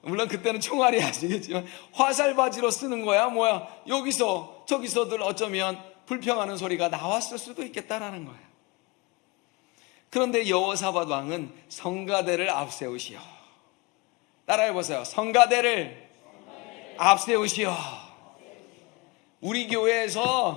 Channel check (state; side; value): quieter; right; 25.6 dB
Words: 물론 그때는 총알이 아시겠지만 화살바지로 쓰는 거야 뭐야. 여기서 저기서들 어쩌면 불평하는 소리가 나왔을 수도 있겠다라는 거예요. 그런데 여호사밧 왕은 성가대를 앞세우시오. 따라해보세요. 성가대를 앞세우시오. 우리